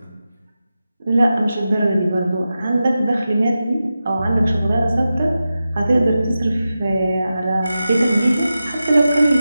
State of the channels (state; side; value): inverted; both; correlation -0.92